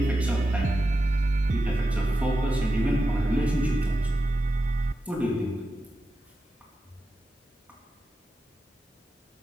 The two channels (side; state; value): both; normal; correlation 0.90